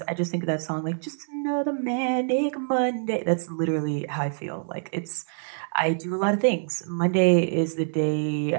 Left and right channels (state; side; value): silent; left; digital silence